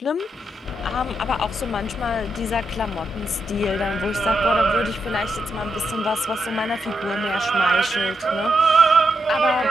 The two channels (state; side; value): normal; both; correlation 0.83